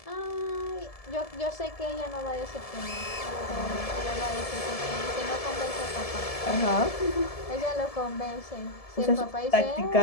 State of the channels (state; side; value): late; right; 1.7 ms